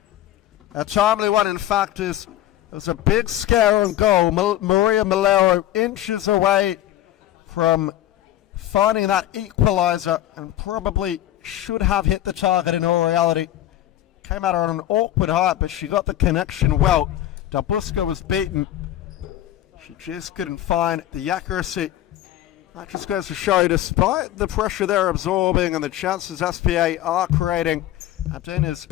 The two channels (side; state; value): right; quieter; 13.2 dB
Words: a timely one, in fact, is it was a big scare on goal. Maria Malero inches away from finding that equaliser and probably should have hit the target in all reality. Came at her on an awkward height, but she got the connection well. Dabusca was beaten. She just couldn't find the accuracy. That just goes to show, despite the pressure they're absorbing and the chances SPA are creating, Andinas